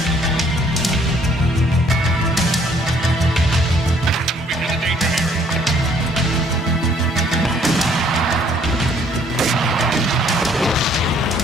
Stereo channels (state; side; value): normal; both; correlation 0.62